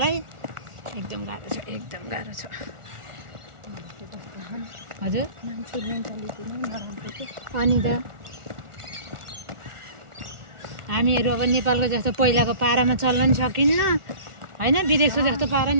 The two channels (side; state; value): left; late; 1.4 ms